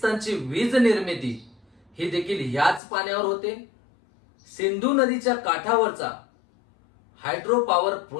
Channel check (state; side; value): drops out; right; at 2.8 s